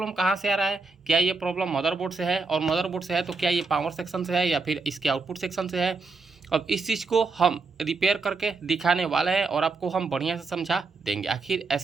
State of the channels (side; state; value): left; quieter; 4.1 dB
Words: कहाँ से आ रहा है? क्या ये प्रॉब्लम मदरबोर्ड से है? और मदरबोर्ड से है तो क्या ये पावर सेक्शन से है या फिर इसके आउटपुट सेक्शन से है? अब इस चीज़ को हम रिपेयर करके दिखाने वाले हैं और आपको हम बढ़िया से समझा देंगे आखिर